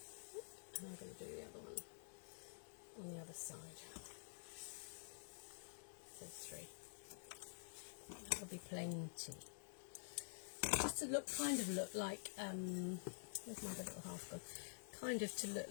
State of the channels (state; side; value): silent; right; digital silence